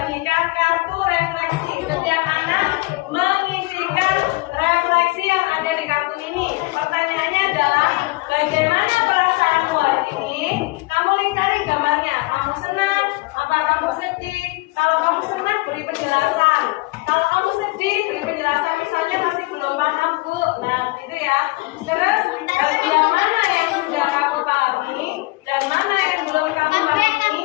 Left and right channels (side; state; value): right; quieter; 23.3 dB